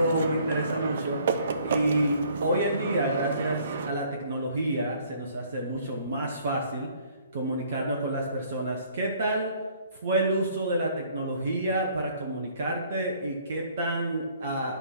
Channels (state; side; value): inverted; both; correlation -0.60